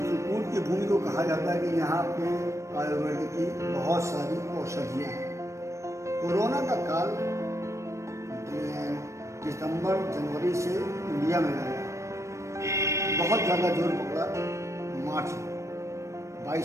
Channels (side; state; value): left; late; 0.14 ms